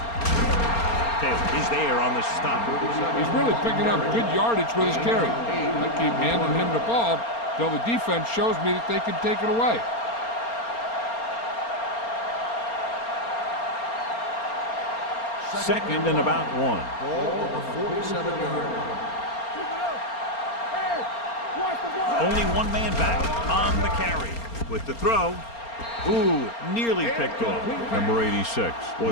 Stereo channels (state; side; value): late; right; 4.3 ms